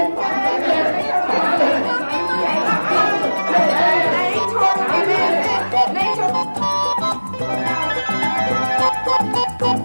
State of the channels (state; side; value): inverted; both; correlation -1.00